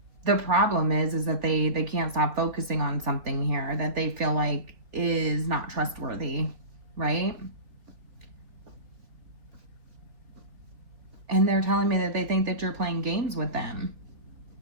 the problem is that they can't stop focusing on something here that they feel like is not trustworthy, right? And they're telling me that they think that you're playing games with them.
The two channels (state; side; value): late; left; 3.6 ms